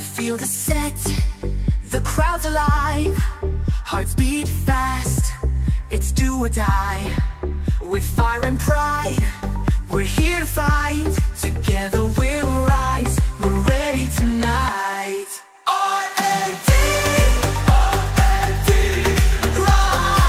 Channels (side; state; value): both; identical; correlation 1.00